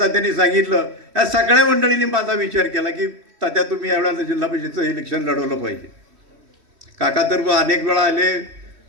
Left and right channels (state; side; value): late; left; 3.1 ms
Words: सांगितलं, या सगळ्या मंडळींनी माझा विचार केला की तात्या तुम्ही यावेळेला जिल्हा परिषदेचं इलेक्शन लढवलं पाहिजे. काका तर अनेक वेळा आले.